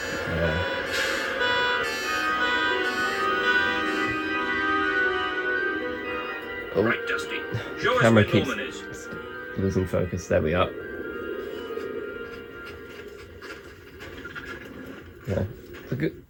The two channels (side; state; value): both; identical; correlation 1.00